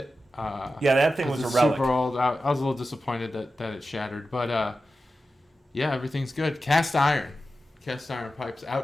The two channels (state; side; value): normal; both; correlation 0.92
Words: That thing was a relic. Super old. I was a little disappointed that it shattered, but everything's good. Cast iron pipes